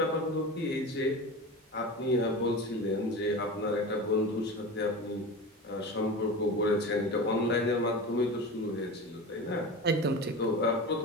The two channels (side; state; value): both; normal; correlation 0.29